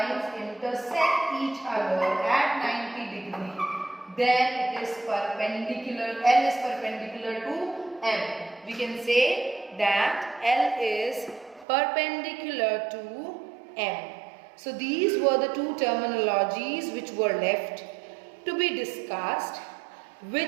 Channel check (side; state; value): left; drops out; at 11.7 s